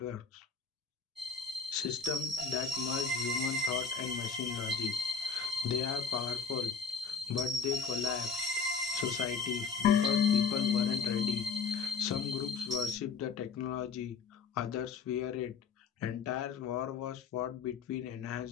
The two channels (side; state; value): right; quieter; 5.5 dB